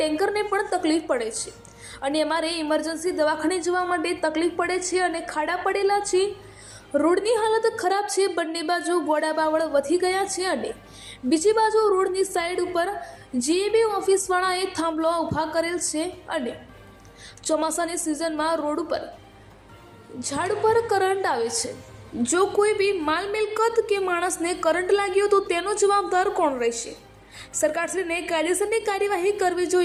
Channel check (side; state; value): both; identical; correlation 1.00